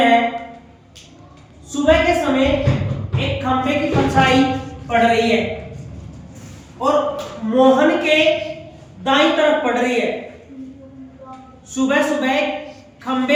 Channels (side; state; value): both; identical; correlation 1.00